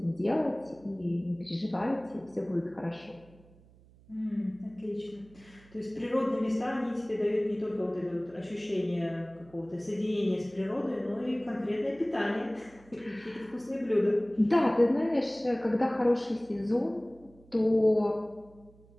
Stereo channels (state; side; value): noise; right; hum, 26 dB below the sound